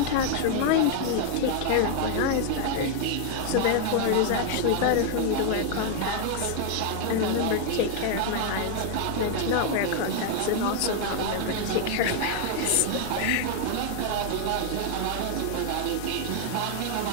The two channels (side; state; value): both; different; correlation 0.00